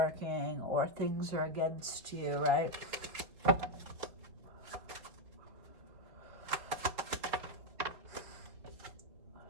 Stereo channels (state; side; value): late; left; 4.8 ms